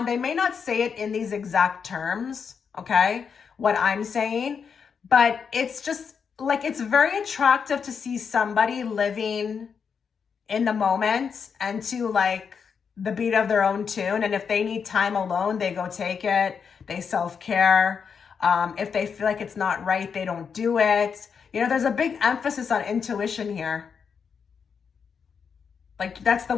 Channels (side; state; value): right; quieter; 6.4 dB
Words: they may not say it in these exact terms, okay, what I'm saying, but it's just like, it's very attractive to see somebody living in the moment and to like the beat of their own tune. And if they need time alone, they go take it. They self-care. If they feel like it's not right, they don't do it. You know, there's a big emphasis on intuition here. Like, that's the